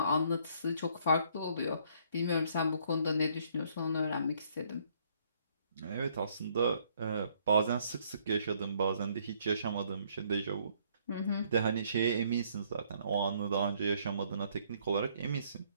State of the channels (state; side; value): inverted; both; correlation -0.66